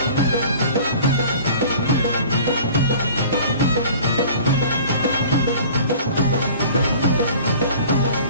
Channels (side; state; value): both; inverted; correlation -0.45